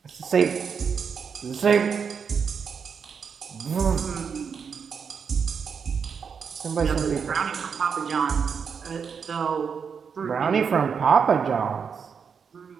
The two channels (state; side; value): quieter; left; 6.3 dB